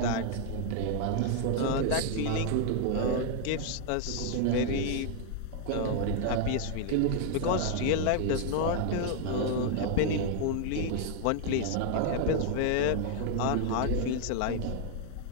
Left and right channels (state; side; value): different; both; correlation 0.00